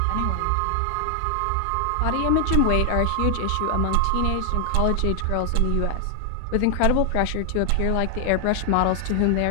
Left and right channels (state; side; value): different; both; correlation 0.00